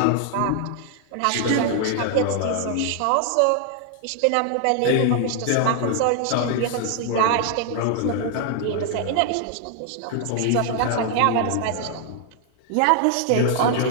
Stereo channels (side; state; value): both; different; correlation 0.00